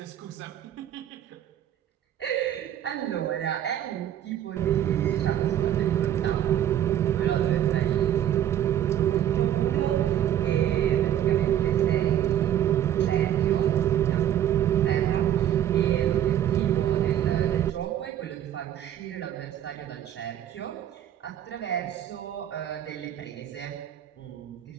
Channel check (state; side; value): quieter; left; 11.0 dB